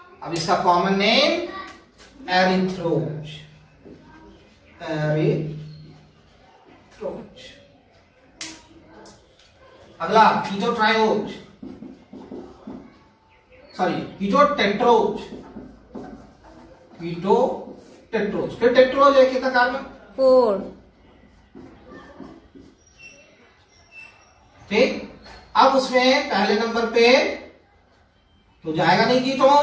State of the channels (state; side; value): identical; both; correlation 1.00